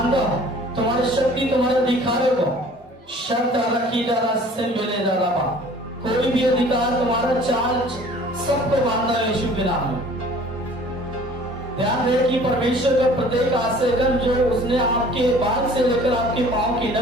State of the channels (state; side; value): normal; both; correlation 0.50